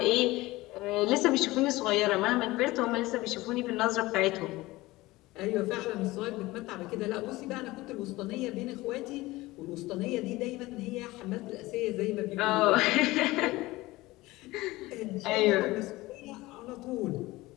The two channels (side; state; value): right; quieter; 19.5 dB